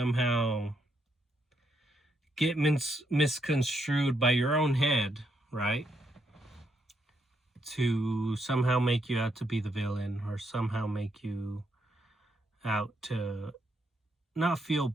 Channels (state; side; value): normal; both; correlation 0.77